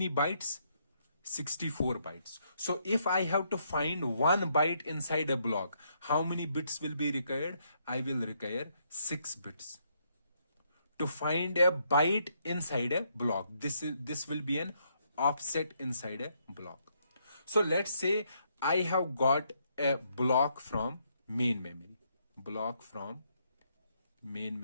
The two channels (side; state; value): both; inverted; correlation -0.74